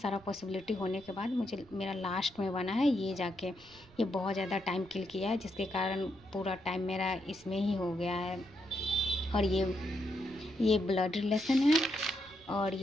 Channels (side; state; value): right; noise; rumble, 25 dB below the sound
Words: पॉसिबिलिटी होने के बाद मुझे मेरा लास्ट में बना है ये जाके। ये बहुत ज़्यादा टाइम किल किया है, जिसके कारण पूरा टाइम मेरा इसमें ही हो गया है। और ये ब्लड रिलेशन है और